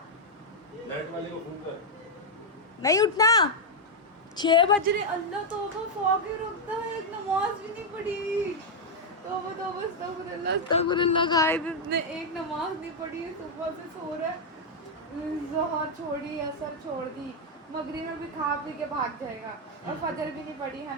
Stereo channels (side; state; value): both; normal; correlation 0.00